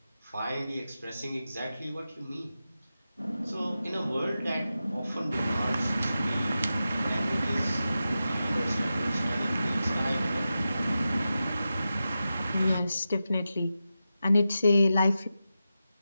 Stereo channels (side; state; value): both; inverted; correlation -0.91